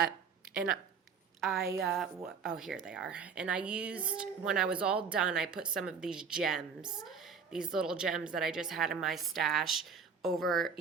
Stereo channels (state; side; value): quieter; left; 6.0 dB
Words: and oh, here they are. And I used, when I was all done, I put some of these gems, these little gems that I just had in my stash over,